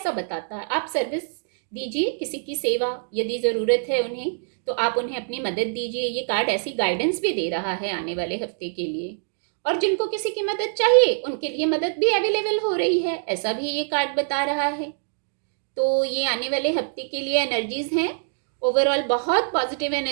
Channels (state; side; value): silent; left; digital silence